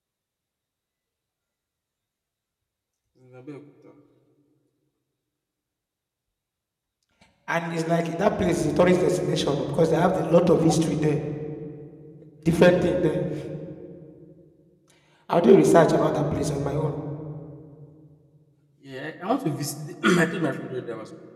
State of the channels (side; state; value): both; identical; correlation 1.00